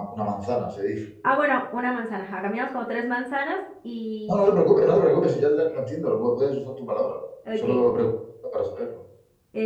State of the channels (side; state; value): both; identical; correlation 1.00